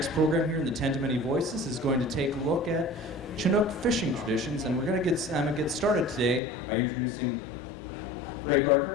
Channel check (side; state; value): right; drops out; at 6.4 s